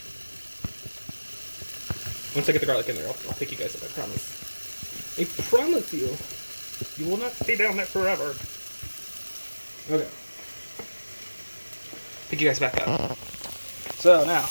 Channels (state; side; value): inverted; both; correlation -1.00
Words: Once I get the garlic in there, I'll pick you guys up, I promise. I promise you, you will not stay down there forever. Okay. Pick you guys back up. So now,